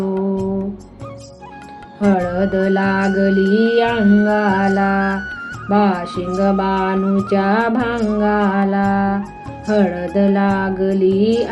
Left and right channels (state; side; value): identical; both; correlation 1.00